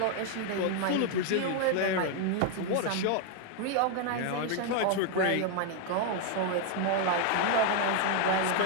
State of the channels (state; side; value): different; both; correlation 0.01